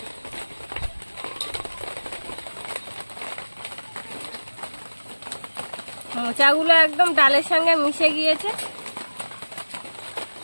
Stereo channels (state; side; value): inverted; both; correlation -1.00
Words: মোচাগুলো একদম ডালের সঙ্গে মিশে গিয়েছে।